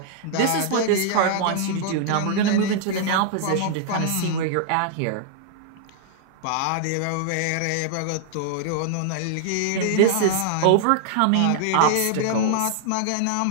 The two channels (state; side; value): different; both; correlation -0.01